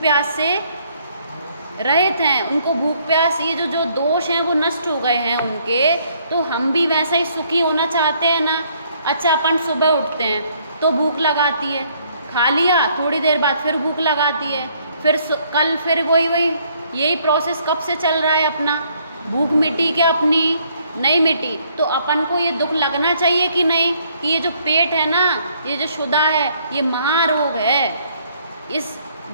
प्यास से रहित हैं, उनको भूख प्यास ये जो दोष हैं वो नष्ट हो गए हैं उनके। तो हम भी वैसा ही सुखी होना चाहते हैं ना। अच्छा, अपन सुबह उठते हैं तो भूख लगाती है, खा लिया, थोड़ी देर बाद फिर भूख लगाती है, फिर कल फिर वही यही प्रोसेस कब से चल रहा है अपना। भूख मिटी क्या अपनी? नहीं मिटी। तो अपन को ये दुख लगना चाहिए कि नहीं कि ये जो पेट है ना, ये जो शुदा है, ये महारोग है। इस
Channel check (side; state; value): both; inverted; correlation -0.66